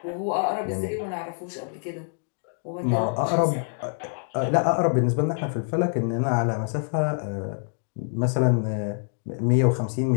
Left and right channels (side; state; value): right; silent; 61 dB below the other